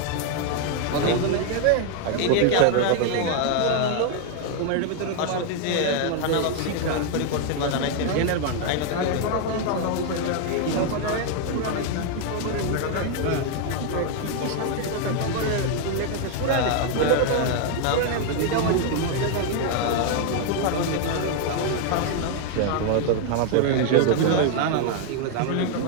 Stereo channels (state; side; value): different; both; correlation 0.00